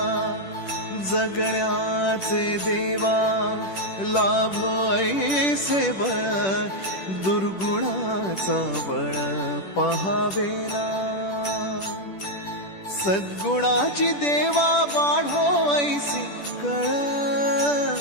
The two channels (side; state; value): right; late; 10 ms